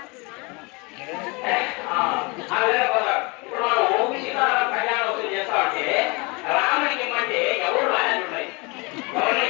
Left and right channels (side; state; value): right; quieter; 28.2 dB